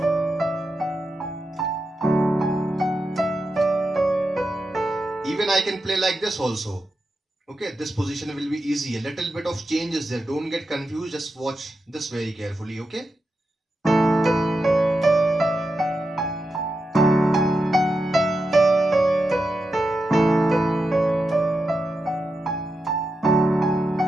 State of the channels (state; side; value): normal; both; correlation 0.88